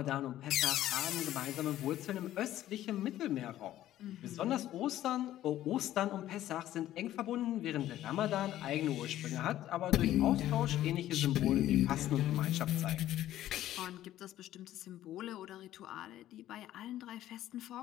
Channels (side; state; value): right; quieter; 13.3 dB